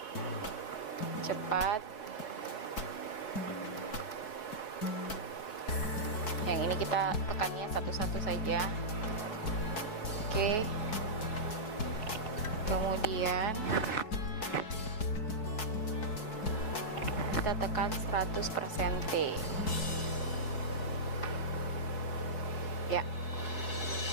cepat. Yang ini kita tekannya satu-satu saja. Oke. Kemudian kita tekan 100% T. Ya,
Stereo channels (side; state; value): right; late; 4.6 ms